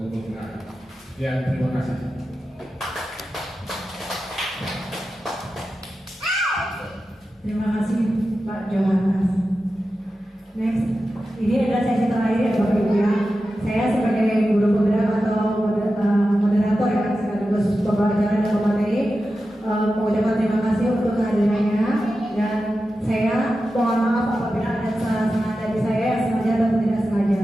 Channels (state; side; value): normal; both; correlation 0.92